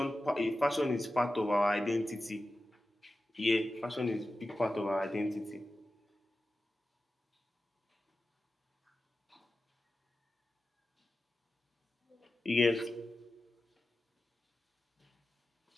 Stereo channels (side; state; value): both; normal; correlation 0.94